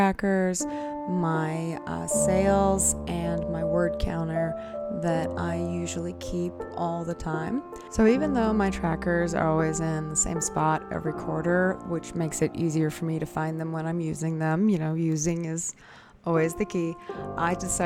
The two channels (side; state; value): both; identical; correlation 1.00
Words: my sales, and my word counter that I usually keep all the time. So even though my trackers are always in the same spot every quarter, which makes it easier for me to find them when I'm using them, using is always the key, I